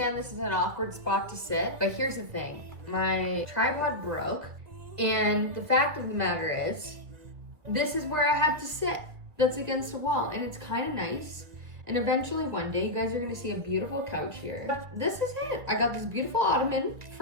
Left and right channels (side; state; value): left; late; 1.7 ms